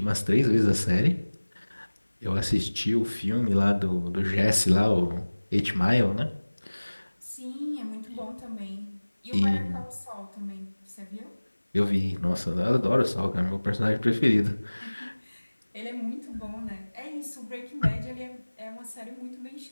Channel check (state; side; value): inverted; both; correlation -1.00